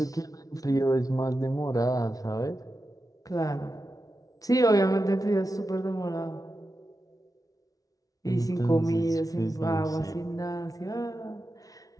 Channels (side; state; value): right; late; 0.18 ms